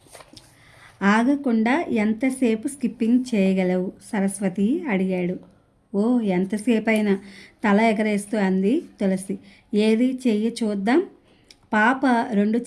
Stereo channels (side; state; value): both; identical; correlation 1.00